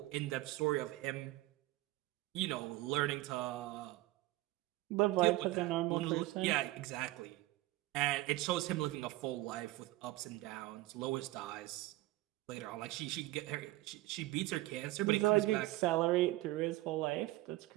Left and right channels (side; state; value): left; quieter; 18.0 dB